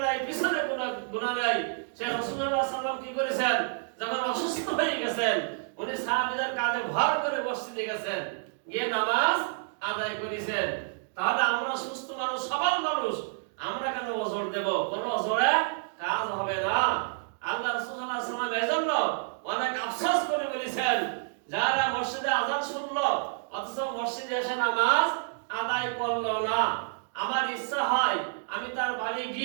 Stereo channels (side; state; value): left; silent; digital silence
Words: নাই, পিছনে কোনো গুনাহ নাই, সে রাসূলুল্লাহ সাল্লাল্লাহু আলাইহি সাল্লাম কি করেছেন, যখন অসুস্থ হয়ে গেছেন, উনি সাহাবীদের কাঁধে ভর করে মসজিদে গেছেন, গিয়ে নামাজ আদায় করেছেন। তাহলে আমরা সুস্থ মানুষ, সবল মানুষ, আমরা কেন ওজর দেব? কোনো ওজরে কাজ হবে না। আল্লাহ রাসূল সাল্লাল্লাহু আলাইহি সাল্লাম এজন্য অনেক আফসোস করে বলেছেন, যারা মসজিদে আযান শুনলো অথচ মসজিদে এসে নামাজ আদায় করলো না, আমার ইচ্ছা হয় আমি তার বাড়ি